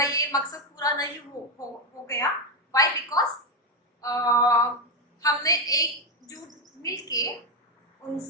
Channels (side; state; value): both; normal; correlation 0.07